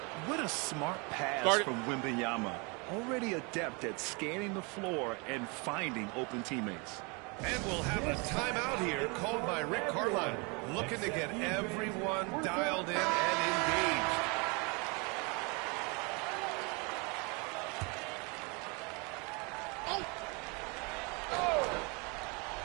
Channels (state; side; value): quieter; left; 30.6 dB